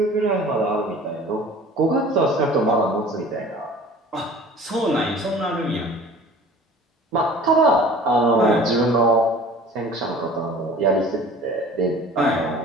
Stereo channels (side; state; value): both; normal; correlation 0.45